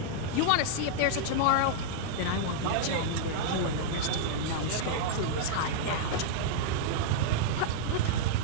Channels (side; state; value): both; different; correlation -0.02